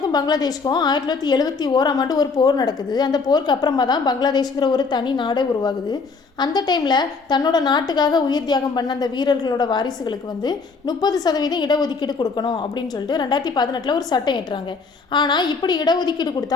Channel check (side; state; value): right; quieter; 4.6 dB